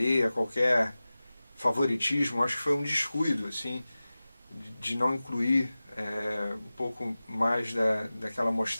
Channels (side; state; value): both; inverted; correlation -0.97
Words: a qualquer favoritismo, acho que foi um descuido, assim, de não incluir um pouco mais daquela